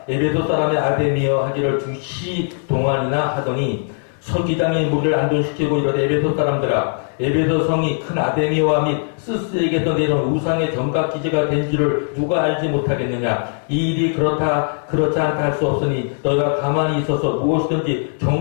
에베소 사람의 아데미여 하기를 2시 동안이나 하더니 서기장의 무리를 안둔시키고 이르되 에베소 사람들아 에베소 성이 큰 아데미와 및 스스에게서 내려온 우상의 정각 기지가 된 줄을 누가 알지 못하겠느냐. 이 일이 그렇지 않다 할 수 없으니 너희가 가만히 있어서 무엇이든지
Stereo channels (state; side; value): silent; right; 58 dB below the other